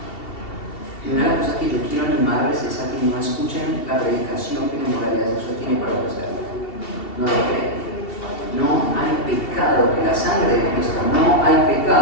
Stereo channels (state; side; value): late; right; 2.7 ms